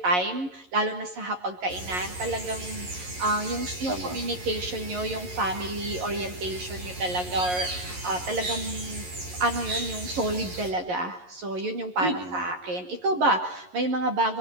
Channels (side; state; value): left; late; 11 ms